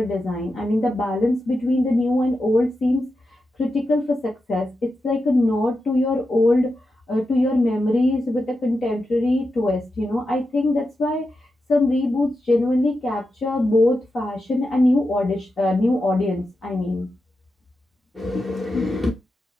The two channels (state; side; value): normal; both; correlation 0.89